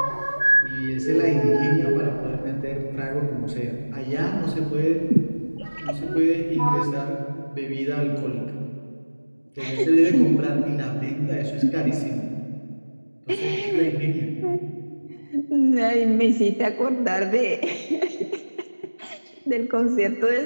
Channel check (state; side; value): inverted; both; correlation -1.00